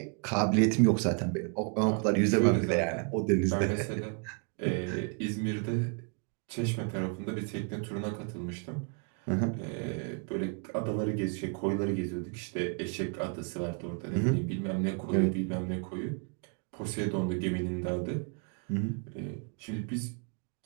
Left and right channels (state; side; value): quieter; left; 38.7 dB